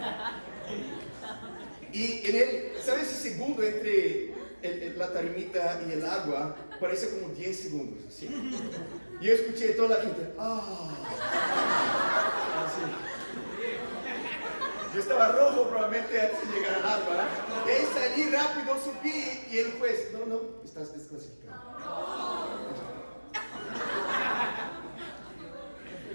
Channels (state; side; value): inverted; both; correlation -1.00